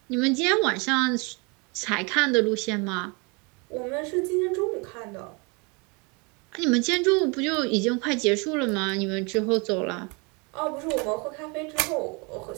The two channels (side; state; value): left; quieter; 30.4 dB